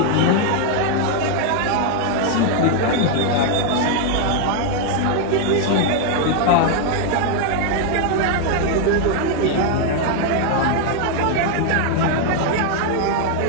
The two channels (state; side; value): different; both; correlation 0.00